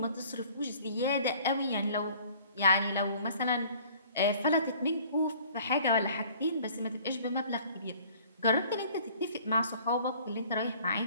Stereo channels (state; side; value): inverted; both; correlation -0.53